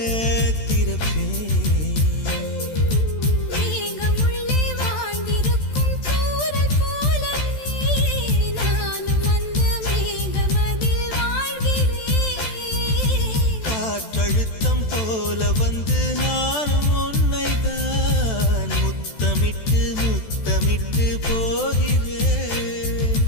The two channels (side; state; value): right; late; 14 ms